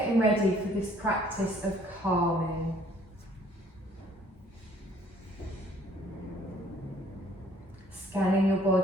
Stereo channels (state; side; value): normal; both; correlation 0.60